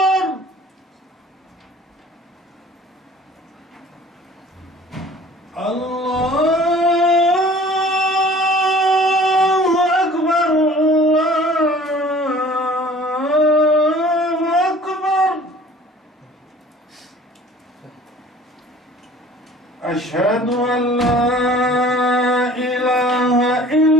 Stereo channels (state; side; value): normal; both; correlation 0.49